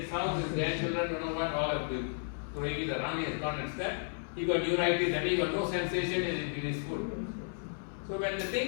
house, his grandchildren don't know what, all of them throwing it around, he has gone and stepped. He got neuritis and he got no sensation in his foot. So when the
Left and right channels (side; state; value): right; silent; 56 dB below the other